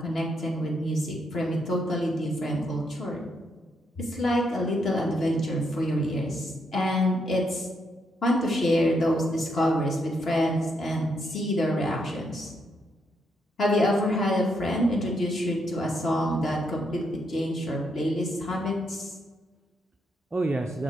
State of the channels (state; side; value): normal; both; correlation 0.77